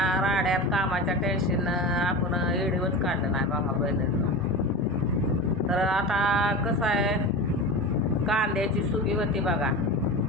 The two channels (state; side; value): normal; both; correlation 0.27